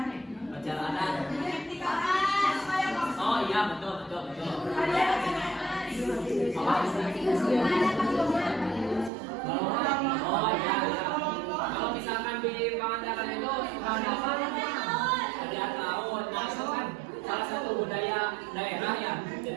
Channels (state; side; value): drops out; left; at 9.1 s